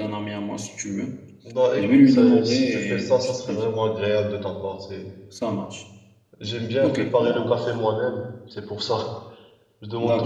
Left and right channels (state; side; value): identical; both; correlation 1.00